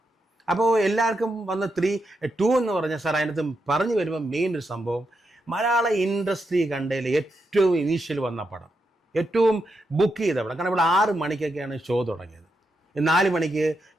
അപ്പോൾ എല്ലാവർക്കും വന്ന് 2 എന്ന് പറഞ്ഞാൽ സാർ, അതിനകത്ത് പറഞ്ഞു വരുമ്പോൾ മെയിൻ ഒരു സംഭവം, മലയാള ഇൻഡസ്ട്രി കണ്ടതിൽ ഏറ്റവും ഇനീഷ്യൽ വന്ന പടം, ഏറ്റവും ബുക്ക് ചെയ്ത പടം. കാരണം ഇവിടെ 6 മണിക്കൊക്കെയാണ് ഷോ തുടങ്ങിയത്. 4 മണിക്ക്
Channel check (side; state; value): both; normal; correlation 0.84